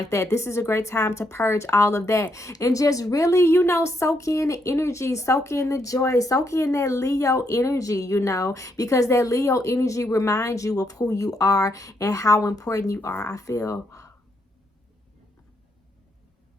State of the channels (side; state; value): both; normal; correlation 0.77